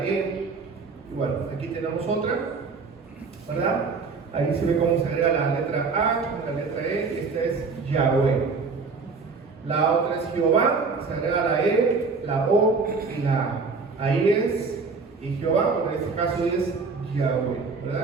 E. Y bueno, aquí tenemos otra, ¿verdad? Ahí se ve cómo se agrega la letra A, la letra E, y esta es Yahweh. La otra es Jehová, se agrega la E, la O y la A. Ahí es, y Jehová, en este caso es Yahweh,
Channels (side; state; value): left; quieter; 4.6 dB